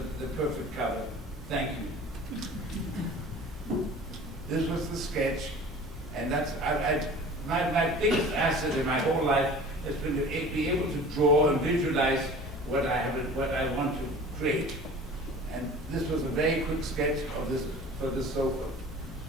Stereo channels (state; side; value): normal; both; correlation 0.42